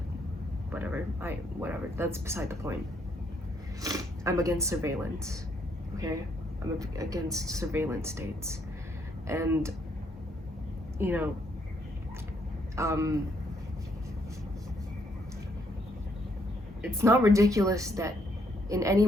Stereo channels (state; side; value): normal; both; correlation 0.71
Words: whatever. That's beside the point. I'm against surveillance. Okay? I'm against surveillance states. And you know, it's not ridiculous that in any